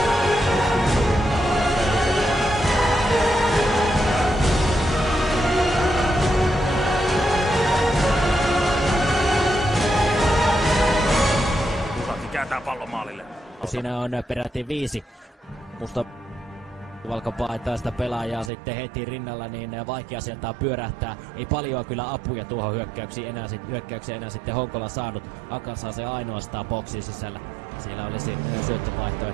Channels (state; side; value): drops out; left; at 18.5 s